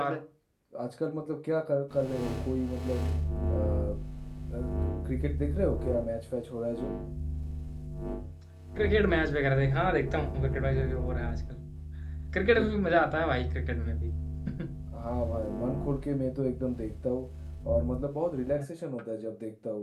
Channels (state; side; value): identical; both; correlation 1.00